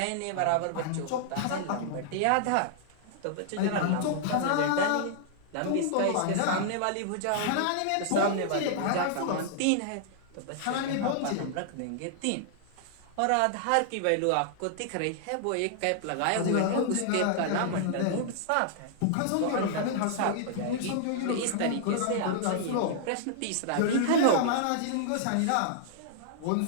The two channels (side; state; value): both; different; correlation -0.01